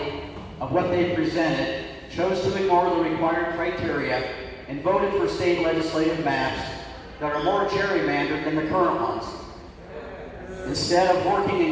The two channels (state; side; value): identical; both; correlation 1.00